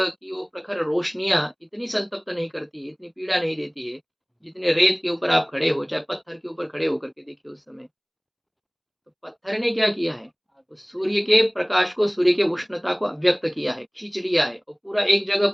की वो प्रखर रोशनियां इतनी संतप्त नहीं करती है, इतनी पीड़ा नहीं देती है, जितने रेत के ऊपर आप खड़े हो, चाहे पत्थर के ऊपर खड़े होकर के देखिए उस समय। तो पत्थर ने क्या किया है, उस सूर्य के प्रकाश को, सूर्य के उष्णता को अव्यक्त किया है, खींच लिया है, और पूरा एक जगह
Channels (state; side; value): identical; both; correlation 1.00